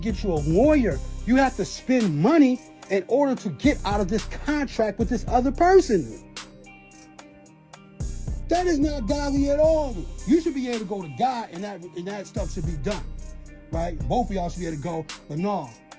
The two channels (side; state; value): both; identical; correlation 1.00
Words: you a lawyer. You have to spend money in order to get out of this contract with this other person. That is not godly at all. You should be able to go to God and that stuff should be done, right? Both of y'all should be able to go, but no,